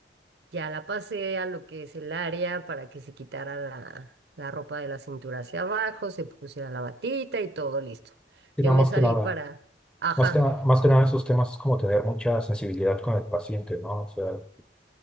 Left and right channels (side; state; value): both; normal; correlation 0.76